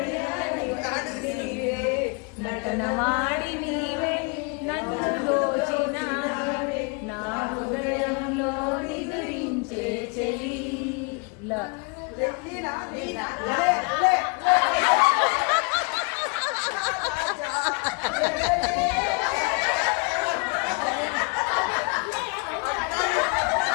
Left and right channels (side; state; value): right; quieter; 32.0 dB